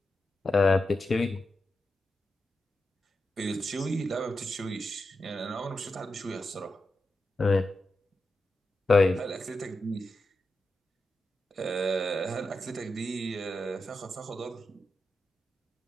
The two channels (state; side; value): normal; both; correlation 0.89